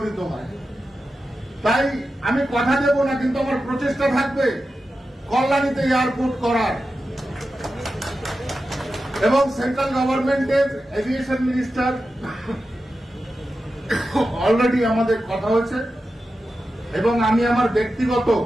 হয়। তাই আমি কথা দেব না, কিন্তু আমার প্রচেষ্টা থাকবে কল্যাণীতে এয়ারপোর্ট করার। এবং সেন্ট্রাল গভর্নমেন্টের এভিয়েশন মিনিস্টার অলরেডি আমাদের কথা হয়েছে এবং আমি আমার ব্যক্তিগত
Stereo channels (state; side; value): normal; both; correlation 0.91